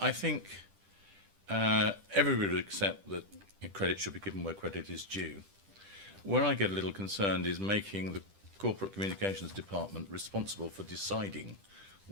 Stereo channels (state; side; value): late; left; 10 ms